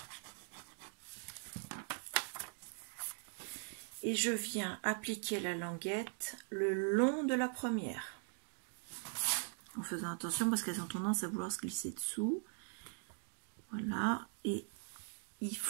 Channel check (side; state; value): left; silent; 50 dB below the other